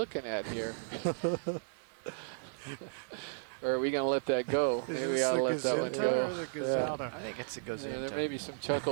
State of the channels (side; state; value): left; silent; 55 dB below the other